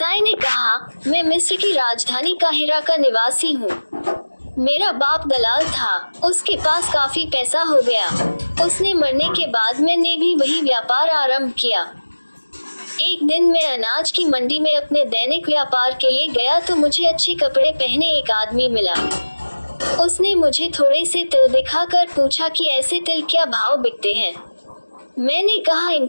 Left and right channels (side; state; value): both; inverted; correlation -1.00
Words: ने कहा, मैं मिस्र की राजधानी काहिरा का निवासी हूँ। मेरा बाप दलाल था, उसके पास काफी पैसा हो गया। उसने मरने के बाद मैंने भी वही व्यापार आरंभ किया। एक दिन मैं अनाज की मंडी में अपने दैनिक व्यापार के लिए गया तो मुझे अच्छे कपड़े पहने एक आदमी मिला। उसने मुझे थोड़े से तिल दिखाकर पूछा कि ऐसे तिल क्या भाव बिकते हैं। मैंने कहा